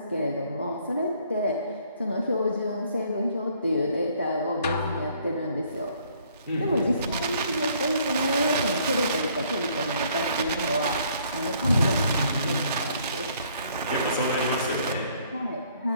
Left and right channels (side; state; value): both; inverted; correlation -0.63